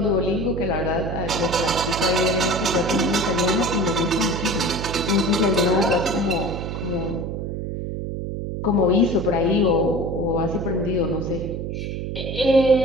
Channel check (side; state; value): right; noise; hum, 5 dB below the sound